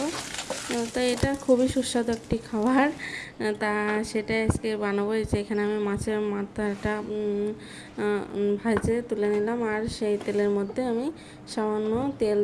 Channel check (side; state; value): both; identical; correlation 1.00